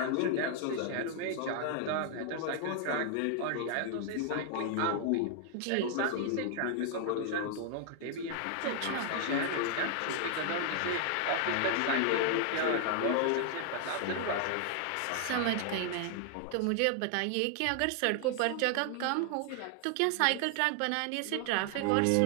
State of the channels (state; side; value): different; both; correlation 0.00